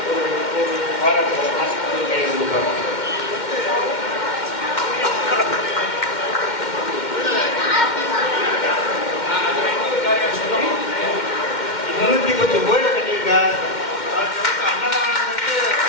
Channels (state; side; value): late; right; 2.1 ms